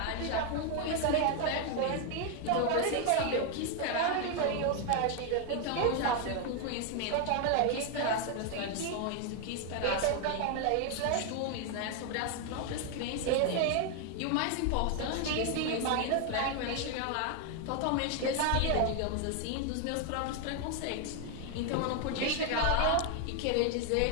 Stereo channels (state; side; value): different; both; correlation 0.01